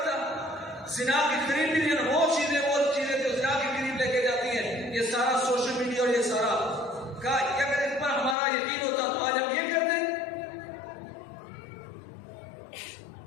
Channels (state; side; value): drops out; right; at 8.3 s